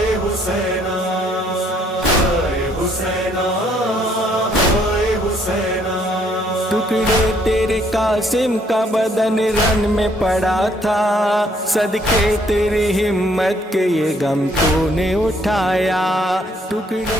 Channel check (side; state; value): both; normal; correlation 0.66